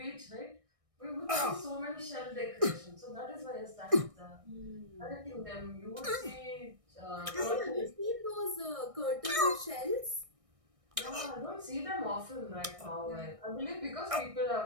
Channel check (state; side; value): late; left; 1.6 ms